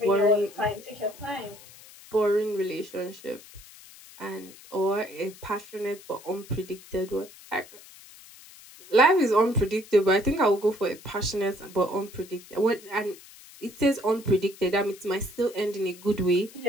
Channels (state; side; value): noise; left; hiss, 20 dB below the sound